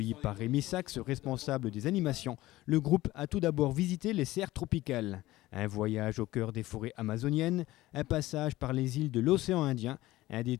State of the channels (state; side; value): quieter; right; 17.3 dB